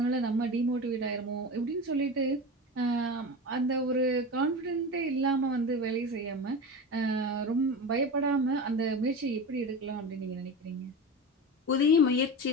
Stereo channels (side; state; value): both; normal; correlation 0.26